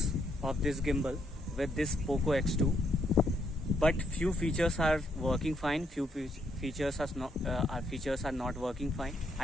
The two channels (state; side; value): normal; both; correlation 0.74